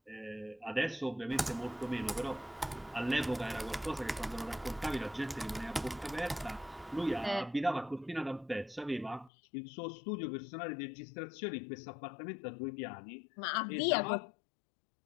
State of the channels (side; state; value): right; drops out; at 9.3 s